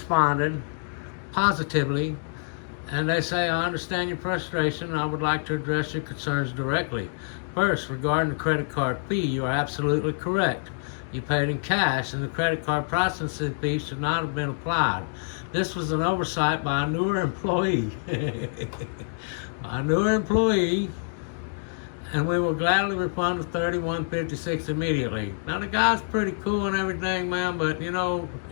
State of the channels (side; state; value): right; silent; digital silence